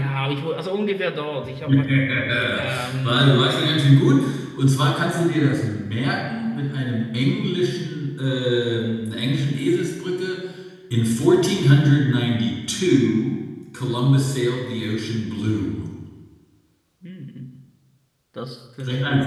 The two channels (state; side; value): identical; both; correlation 1.00